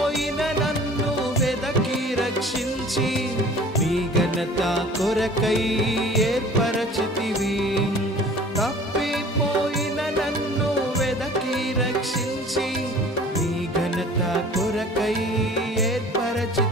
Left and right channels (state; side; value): normal; both; correlation 0.47